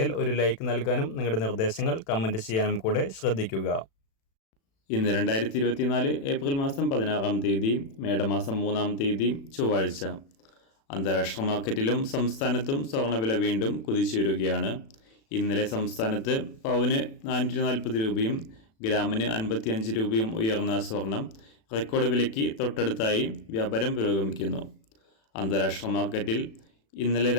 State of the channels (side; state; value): right; late; 36 ms